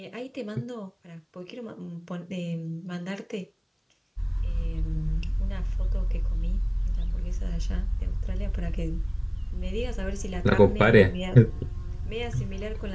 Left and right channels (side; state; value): both; identical; correlation 1.00